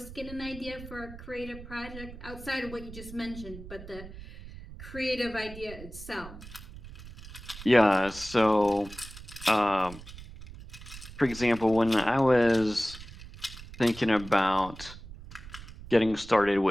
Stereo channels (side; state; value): right; noise; rumble, 15 dB below the sound